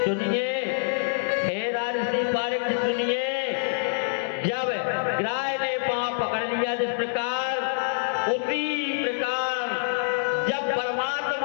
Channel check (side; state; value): right; silent; 61 dB below the other